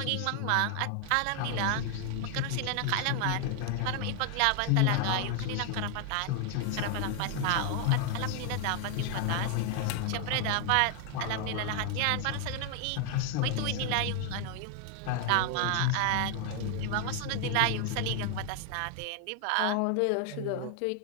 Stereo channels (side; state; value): both; different; correlation 0.01